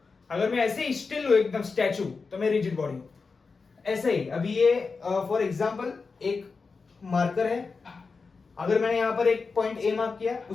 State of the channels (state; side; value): quieter; right; 4.6 dB